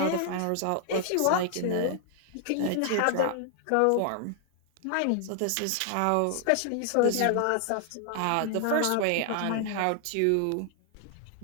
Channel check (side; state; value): both; different; correlation 0.00